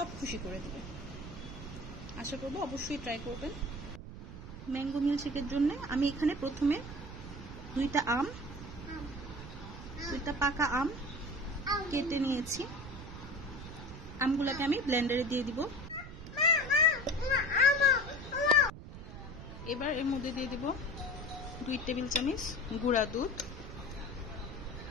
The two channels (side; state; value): right; noise; rumble, 12 dB below the sound